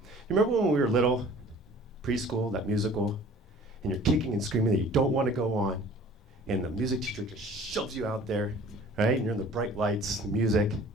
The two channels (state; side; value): normal; both; correlation 0.48